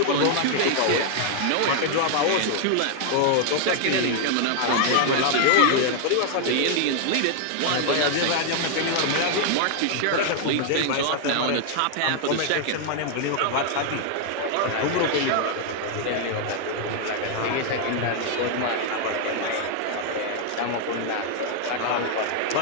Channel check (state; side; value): different; both; correlation 0.00